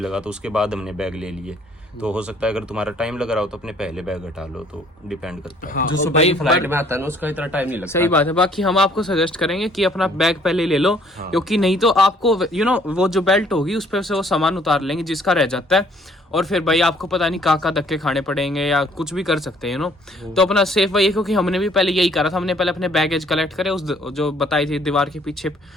तो उसके बाद हमने बैग ले लिए। तो हो सकता है अगर तुम्हारा टाइम लग रहा हो तो अपने पहले बैग हटा लो, तो डिपेंड करता है। जो सुबह की फ्लाइट में आता है ना उसका इतना टाइम नहीं लगता। सही बात है। बाकी हम आपको सजेस्ट करेंगे कि अपना बैग पहले ले लो, क्योंकि नहीं तो आपको वो जो बेल्ट होगी उस पर से वो सामान उतार लेंगे जिसका रह जाता है, और फिर भाई आपको पता नहीं कहाँ धक्के खाने पड़ेंगे या कुछ भी कर सकते हैं तो अपना सेफ वही है। क्योंकि हमने भी पहले यही करा था, हमने पहले अपने बैगेज कलेक्ट करे, उस जो बताई थी दीवार के पीछे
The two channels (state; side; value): normal; both; correlation 0.61